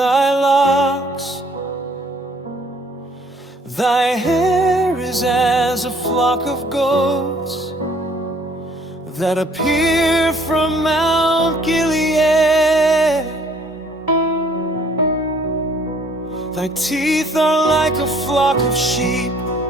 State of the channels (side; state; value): both; normal; correlation 0.60